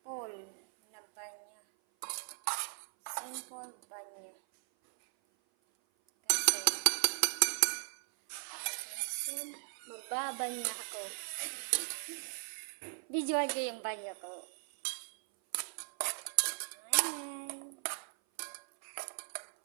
na banya. Simple banya. Kasi magbabanya ako. Visual ko yung banyo ko.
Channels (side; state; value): left; silent; 53 dB below the other